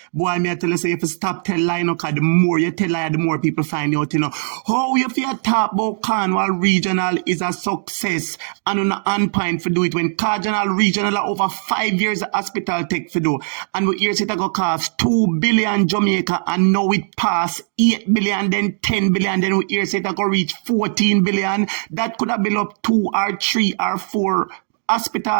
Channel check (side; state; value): left; silent; digital silence